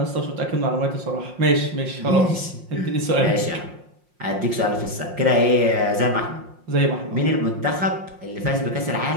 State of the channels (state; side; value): late; left; 5.6 ms